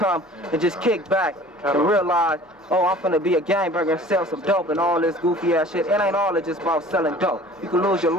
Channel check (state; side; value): normal; both; correlation 0.46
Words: and just kick back and realize, oh, I'm finna be a gangbanger and sell some dope and all this goofy ass shit. It ain't all just about selling dope. You can lose your